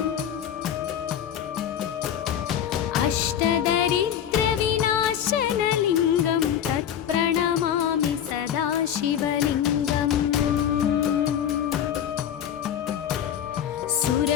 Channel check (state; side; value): quieter; right; 9.6 dB